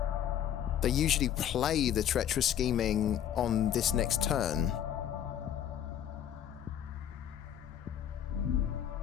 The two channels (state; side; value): quieter; right; 10.0 dB